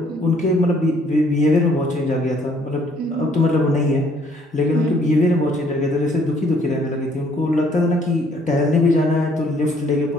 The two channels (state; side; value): normal; both; correlation 0.63